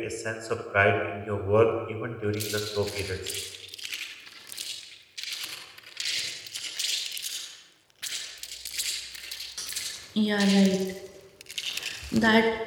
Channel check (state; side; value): identical; both; correlation 1.00